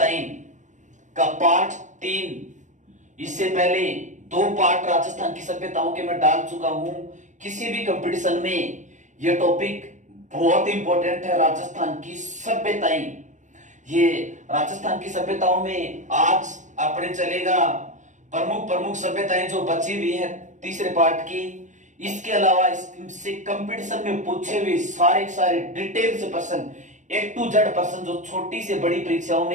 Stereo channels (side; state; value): left; late; 0.35 ms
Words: का पार्ट 3। इससे पहले 2 पार्ट राजस्थान की सभ्यताओं के मैं डाल चुका हूं। किसी भी कंपटीशन में यह टॉपिक बहुत इंपॉर्टेंट है। राजस्थान की सभ्यताएं, ये राजस्थान की सभ्यताओं में आज अपने चलेगा प्रमुख सभ्यताएं जो बची हुई है तीसरे पार्ट की। इसके अलावा इससे कंपटीशन में पूछे हुए सारे डिटेल से प्रश्न, A to Z प्रश्न जो छोटी से बड़ी परीक्षाओं